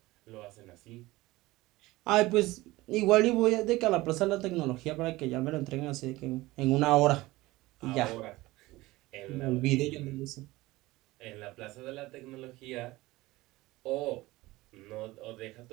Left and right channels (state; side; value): quieter; left; 19.3 dB